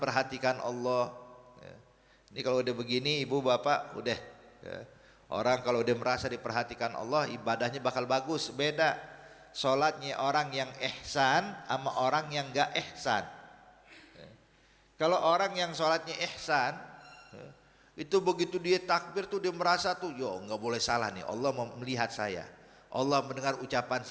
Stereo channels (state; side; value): identical; both; correlation 1.00